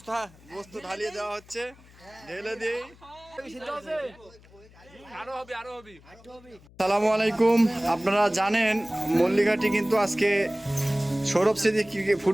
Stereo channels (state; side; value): noise; left; hum, 25 dB below the sound